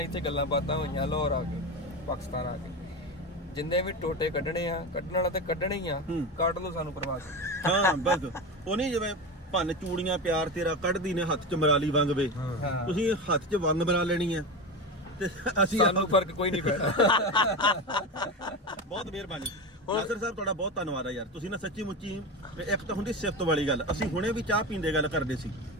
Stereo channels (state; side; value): normal; both; correlation 0.22